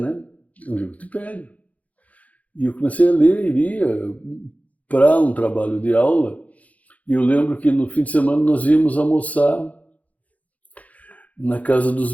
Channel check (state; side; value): late; right; 0.071 ms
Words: É um livro que te pega. E eu comecei a ler e lia para um trabalho de aula. E eu lembro que no fim de semana nós íamos almoçar na casa dos